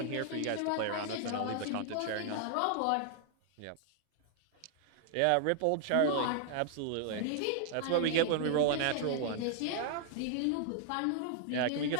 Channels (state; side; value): different; both; correlation -0.01